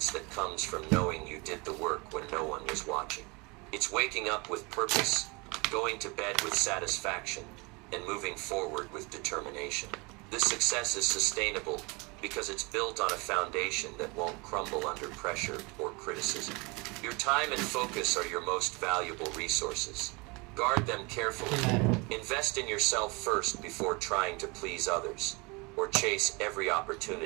that comes from knowing you did the work when no one was watching. It's waking up with purpose, going to bed with satisfaction, and moving forward with determination. This success is sustainable because it's built on a foundation that won't crumble under pressure or criticism. Your time and focus are your most valuable resources. Guard them carefully. Invest in yourself first before trying to please others, or chase every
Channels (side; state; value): left; quieter; 27.6 dB